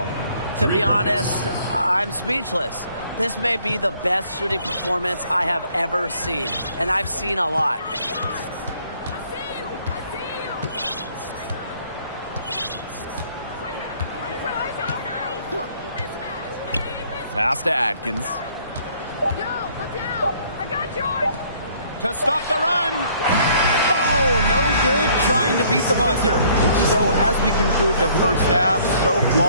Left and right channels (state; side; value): inverted; both; correlation -0.61